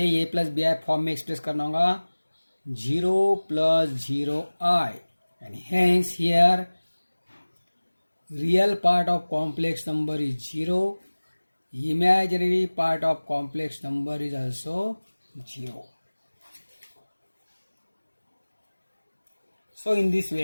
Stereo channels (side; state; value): both; inverted; correlation -1.00